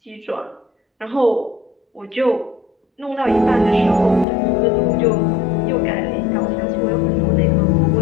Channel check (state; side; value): drops out; right; at 4.2 s